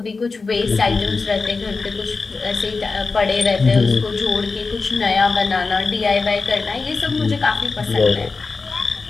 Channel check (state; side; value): quieter; right; 4.2 dB